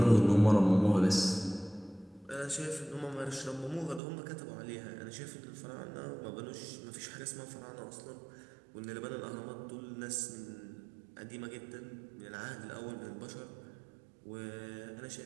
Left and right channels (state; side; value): drops out; left; at 4.0 s